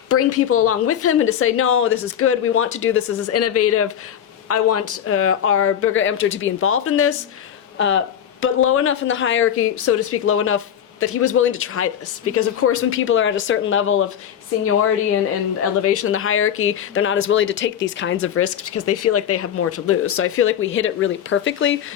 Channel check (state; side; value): quieter; right; 9.4 dB